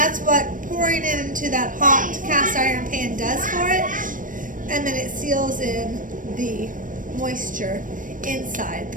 what pouring it into that hot cast iron pan does for it. And then it seals in the moisture inside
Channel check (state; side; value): late; left; 0.38 ms